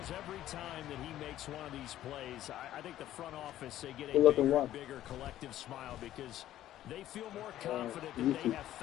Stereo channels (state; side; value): quieter; right; 13.0 dB